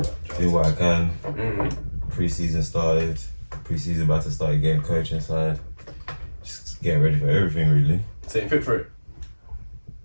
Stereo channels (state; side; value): inverted; both; correlation -1.00